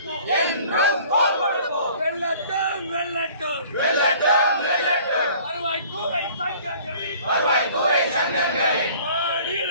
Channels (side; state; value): both; inverted; correlation -0.51